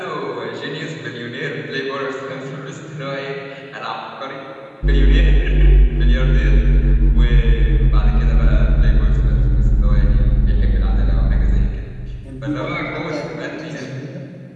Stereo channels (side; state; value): both; identical; correlation 1.00